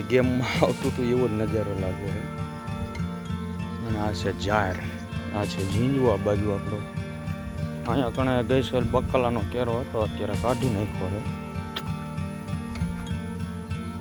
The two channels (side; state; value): both; identical; correlation 1.00